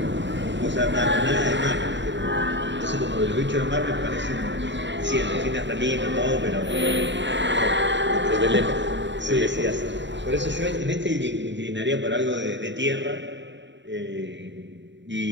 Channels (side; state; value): left; late; 0.53 ms